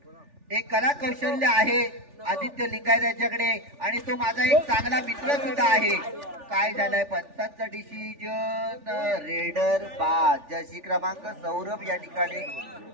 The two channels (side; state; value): left; late; 3.4 ms